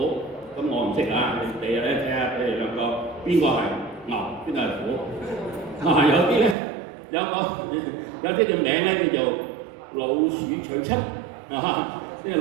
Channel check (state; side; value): drops out; left; at 6.6 s